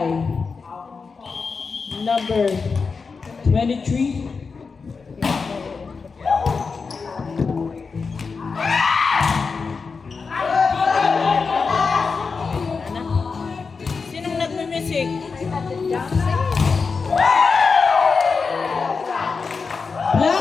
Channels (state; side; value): quieter; right; 4.9 dB